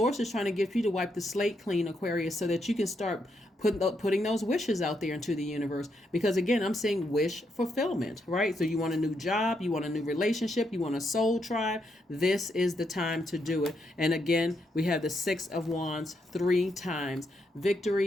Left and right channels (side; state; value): both; normal; correlation 0.79